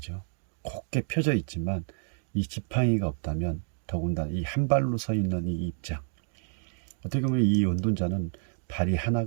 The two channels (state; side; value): silent; left; 58 dB below the other